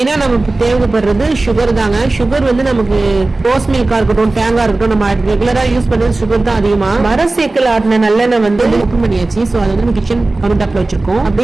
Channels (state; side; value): quieter; left; 3.1 dB